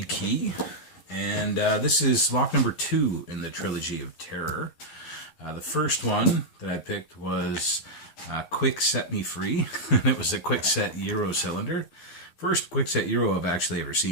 key, and this is lock number 2 in the trilogy of terror. The first one that I picked was Quick Set Me Free. It was a quick set Euro cylinder. First quick set Euro I've actually ever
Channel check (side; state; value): right; late; 11 ms